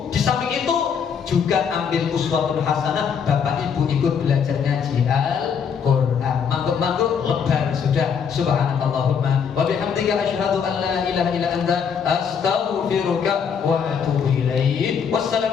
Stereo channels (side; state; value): right; quieter; 6.9 dB